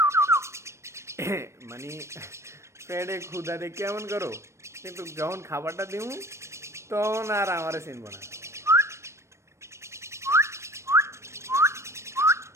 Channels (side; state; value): left; late; 0.13 ms